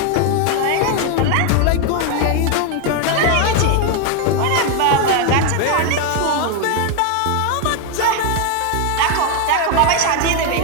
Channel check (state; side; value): different; both; correlation 0.01